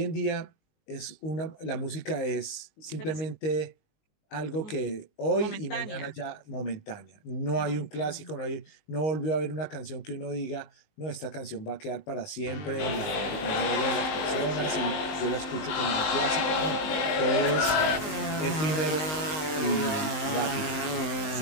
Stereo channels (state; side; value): late; right; 19 ms